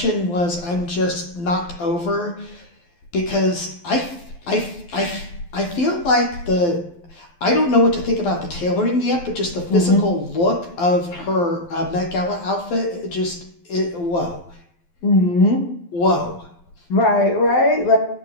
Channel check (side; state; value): right; late; 12 ms